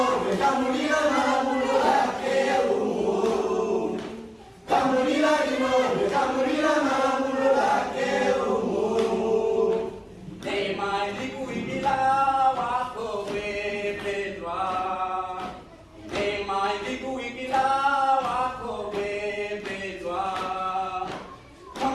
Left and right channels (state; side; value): identical; both; correlation 1.00